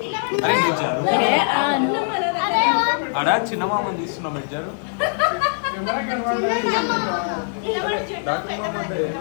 ఆడ చిన్న మామని తీస్తున్నాం ఇద్దరు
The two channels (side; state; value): right; silent; digital silence